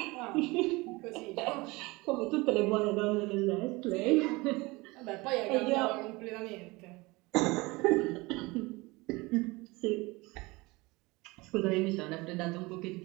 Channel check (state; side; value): quieter; left; 23.2 dB